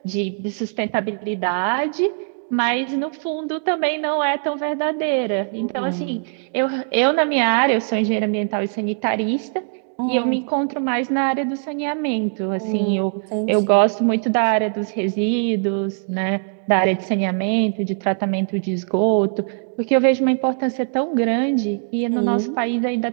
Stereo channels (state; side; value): silent; left; digital silence